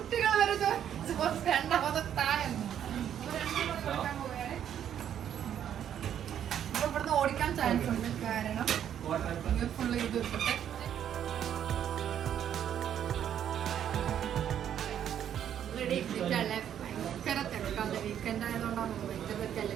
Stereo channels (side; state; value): left; quieter; 9.7 dB